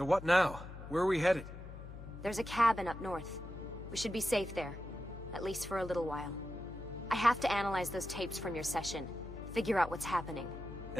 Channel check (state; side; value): noise; left; hum, 12 dB below the sound